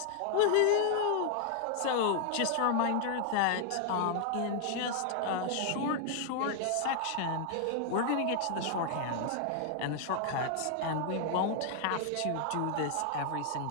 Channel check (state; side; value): different; both; correlation 0.00